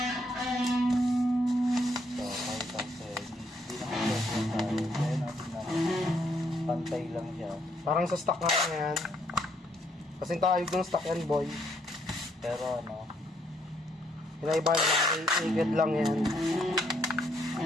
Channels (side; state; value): both; normal; correlation 0.71